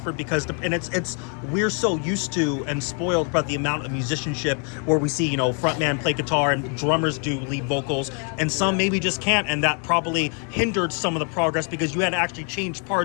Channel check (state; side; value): quieter; right; 39.2 dB